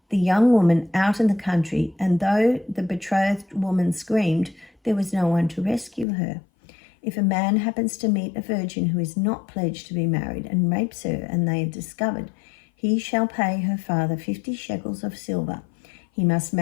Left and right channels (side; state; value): right; drops out; at 6.1 s